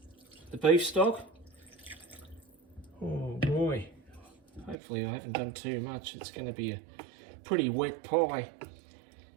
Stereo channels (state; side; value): drops out; left; at 4.8 s